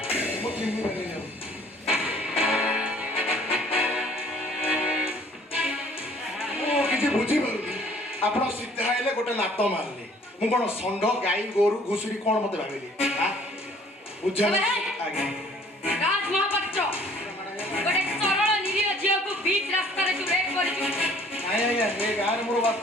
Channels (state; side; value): normal; both; correlation 0.56